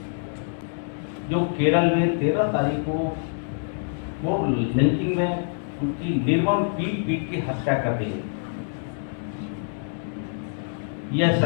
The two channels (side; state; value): right; silent; 60 dB below the other